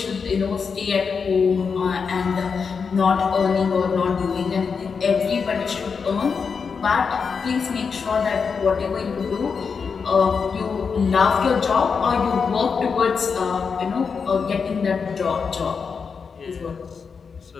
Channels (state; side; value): quieter; right; 5.7 dB